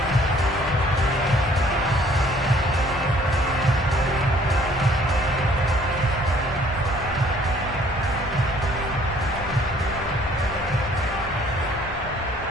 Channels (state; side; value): normal; both; correlation 0.58